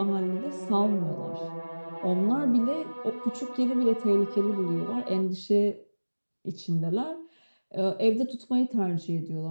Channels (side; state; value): both; inverted; correlation -1.00